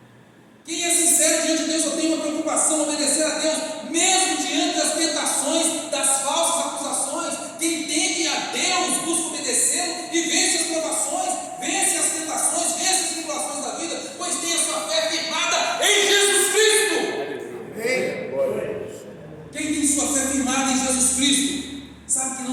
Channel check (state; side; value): identical; both; correlation 1.00